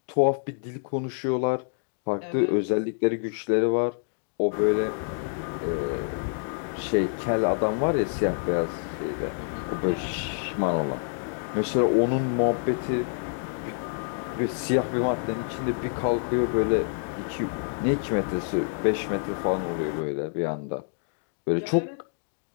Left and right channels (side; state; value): right; silent; digital silence